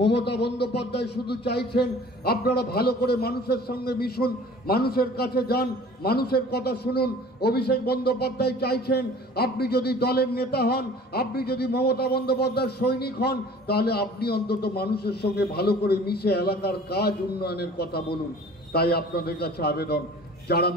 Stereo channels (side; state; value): both; normal; correlation 0.47